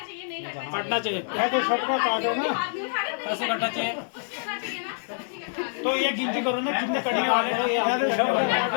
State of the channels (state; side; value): silent; right; digital silence